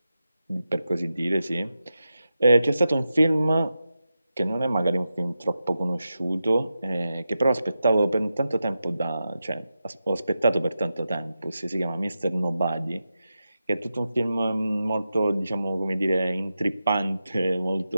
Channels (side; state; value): both; inverted; correlation -0.90